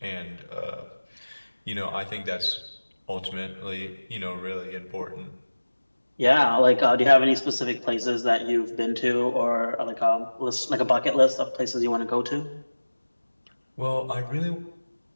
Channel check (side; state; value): both; inverted; correlation -1.00